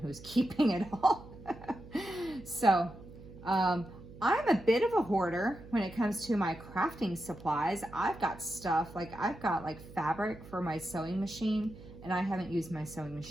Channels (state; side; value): noise; right; hum, 17 dB below the sound